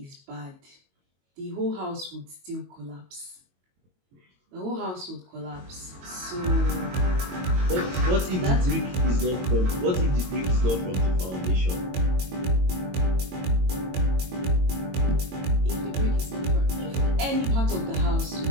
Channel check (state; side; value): late; left; 22 ms